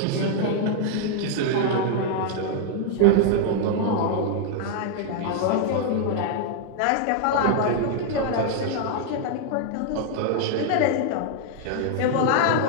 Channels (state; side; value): different; both; correlation -0.01